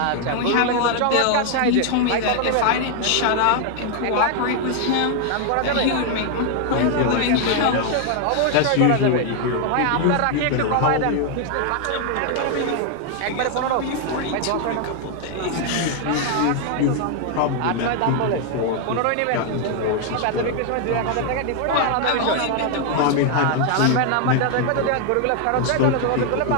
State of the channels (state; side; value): different; both; correlation 0.00